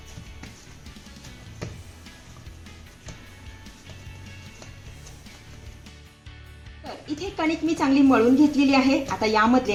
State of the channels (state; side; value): identical; both; correlation 1.00